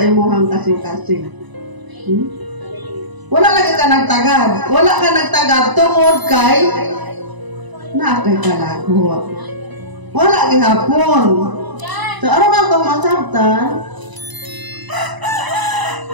kasing-kasing. Wala lagi ka nagtagad. Wala ka nagtagad tungod kay kay kalagot. Wala gihapon. So ano na itong masabtan?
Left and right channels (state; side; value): late; left; 1.0 ms